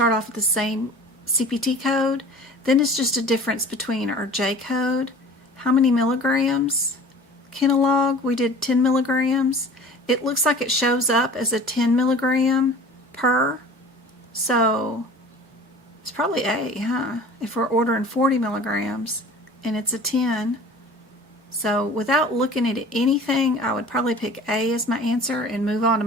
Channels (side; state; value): both; normal; correlation 0.43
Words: off with the same CPT code. Then it's just a difference between our J code. How many milligrams? Kinolog, we did 10 milligrams. It looks like it shows up as a 10 milligram per. So it's probably A, huh? If we're ordering 40 milligrams and it's a 10. So without looking at anything, I would probably pick A as my answer and move on to